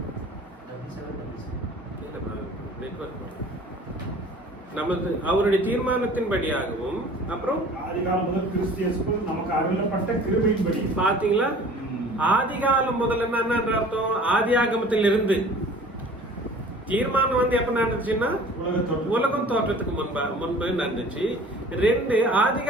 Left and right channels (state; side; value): normal; both; correlation 0.46